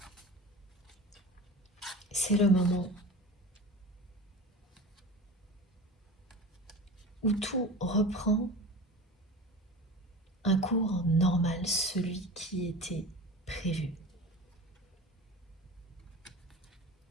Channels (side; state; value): both; normal; correlation 0.33